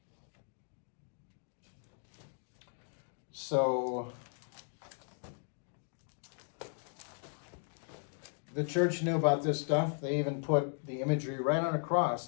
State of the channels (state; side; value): silent; right; 53 dB below the other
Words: So the church knew about this stuff. They even put the imagery right on a cross.